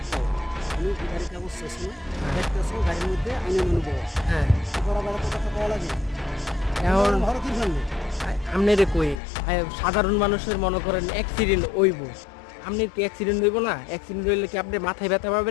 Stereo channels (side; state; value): right; drops out; at 9.2 s